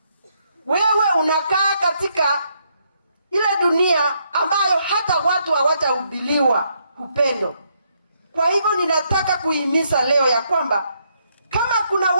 Wewe unakaa katika ile dunia ambayo hata watu hawatahubiriwa upendo. Kwa hivyo ninataka kuhimiza leo ya kwamba kama kuna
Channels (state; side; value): inverted; both; correlation -0.75